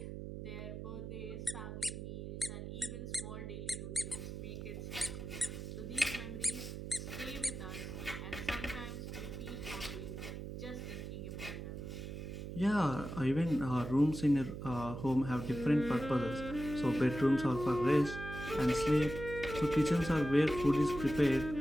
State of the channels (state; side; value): noise; right; hum, 7 dB below the sound